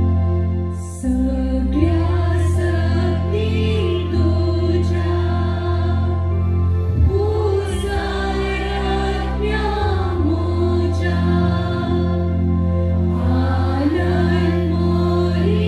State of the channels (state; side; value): identical; both; correlation 1.00